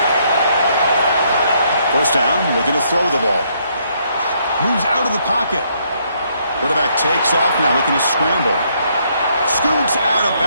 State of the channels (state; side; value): inverted; both; correlation -0.71